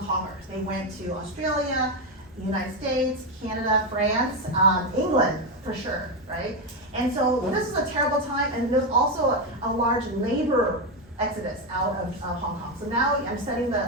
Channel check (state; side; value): normal; both; correlation 0.09